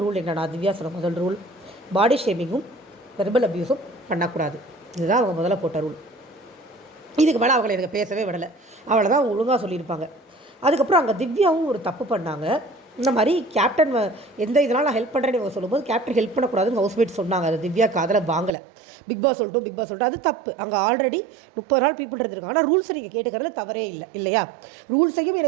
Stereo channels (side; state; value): left; drops out; at 18.5 s